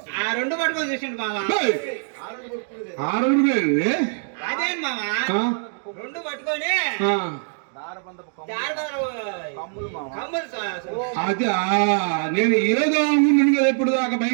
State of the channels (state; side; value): silent; left; 61 dB below the other